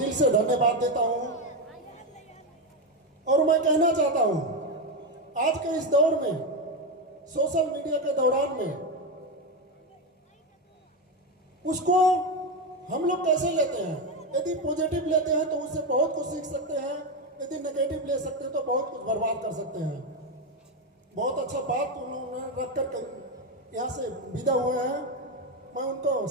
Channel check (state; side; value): normal; both; correlation 0.11